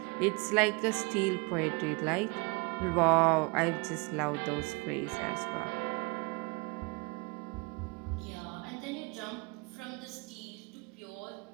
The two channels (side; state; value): left; quieter; 28.2 dB